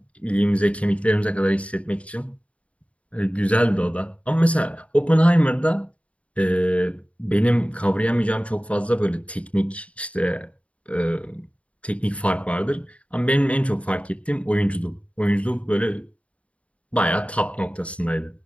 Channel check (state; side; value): late; right; 0.064 ms